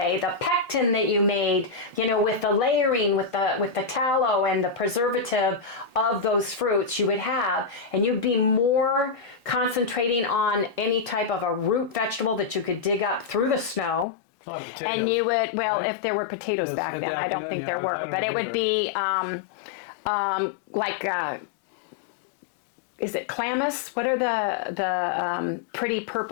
the pectin that you made, with the layering, with the tallow and the preservative of those fruits, you would have, and you'd be more concentrating on any type of a root vegetable that you could dig up through the snow. A lot of potatoes. And you would, if there were potatoes back then, I don't think there were, but it would be is it calamus? What are the pretty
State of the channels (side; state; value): right; drops out; at 14.1 s